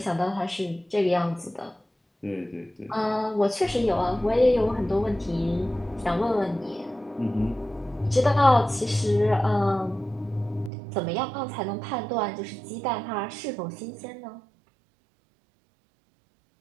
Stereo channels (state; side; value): drops out; left; at 10.7 s